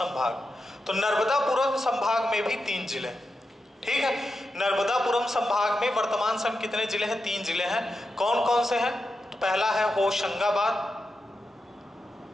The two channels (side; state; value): both; normal; correlation 0.89